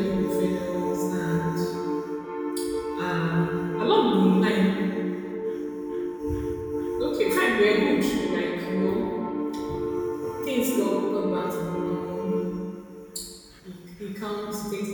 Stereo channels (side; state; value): both; identical; correlation 1.00